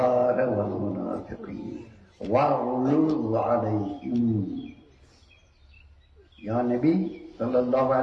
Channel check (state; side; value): identical; both; correlation 1.00